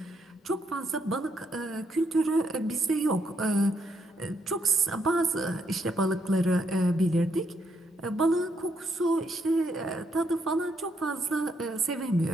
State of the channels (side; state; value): both; normal; correlation 0.75